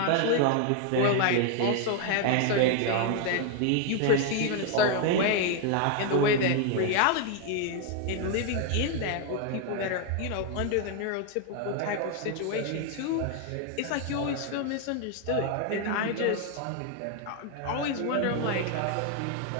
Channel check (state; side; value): different; both; correlation 0.01